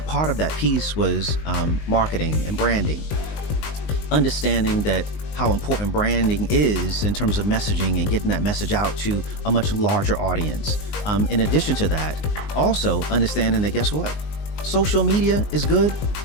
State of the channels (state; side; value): late; right; 19 ms